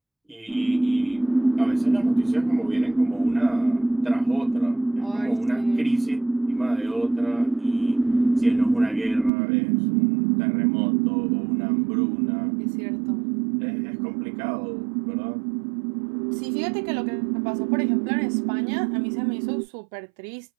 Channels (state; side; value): drops out; left; at 9.3 s